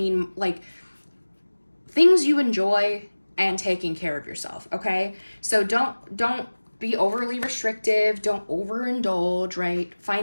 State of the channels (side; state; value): both; inverted; correlation -1.00